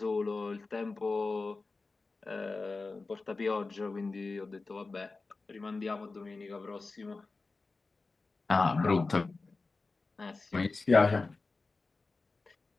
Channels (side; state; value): right; quieter; 3.8 dB